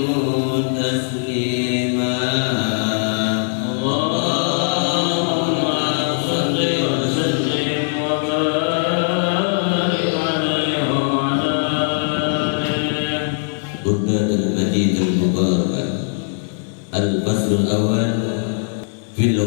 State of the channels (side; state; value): right; silent; 58 dB below the other